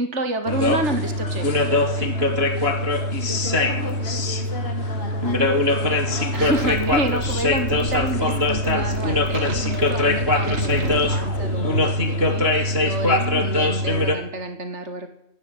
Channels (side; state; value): left; late; 3.0 ms